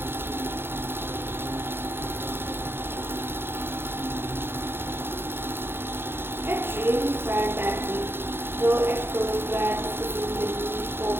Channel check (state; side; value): late; left; 0.11 ms